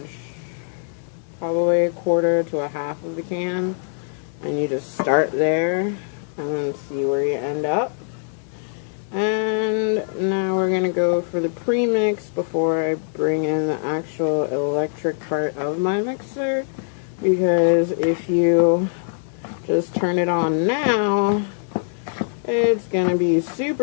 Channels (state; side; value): silent; right; 64 dB below the other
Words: probably 1/4 to 1/2 of the can, and you just start there and then see where you end up. And now we're gonna go for the premix before I bring in the actual electric part of my mixer, because if you just turn it on now, it's gonna be